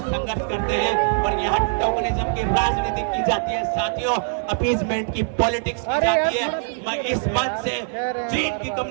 करते हैं और यहाँ टोकनिज्म की राजनीति की जाती है। साथियों, अपीजमेंट की पॉलिटिक्स की जाती है। मैं इस मंच से चीन की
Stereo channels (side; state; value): left; silent; digital silence